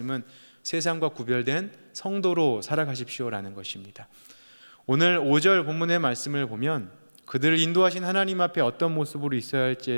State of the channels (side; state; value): both; inverted; correlation -1.00